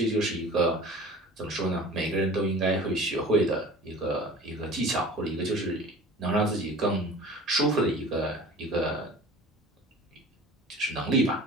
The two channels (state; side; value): normal; both; correlation 0.41